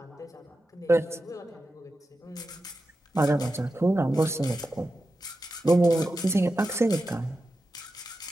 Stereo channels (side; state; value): both; normal; correlation 0.91